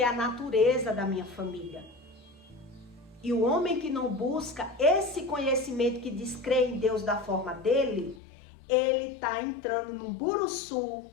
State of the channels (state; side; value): drops out; right; at 8.2 s